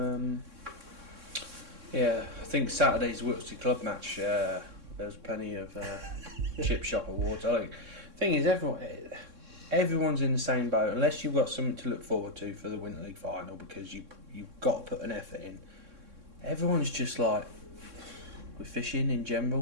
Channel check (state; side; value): late; left; 3.6 ms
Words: Yeah, I think Saturday's Wiltshire Club match, there was plenty of chip shop awards. I think the thing is, everyone's in the same boat unless you've got something to look forward to for the Winter League final, because you've got to put an effort in. Everyone's just like, we're fishing in